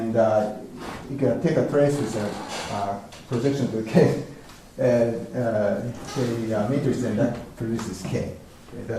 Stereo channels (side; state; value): both; identical; correlation 1.00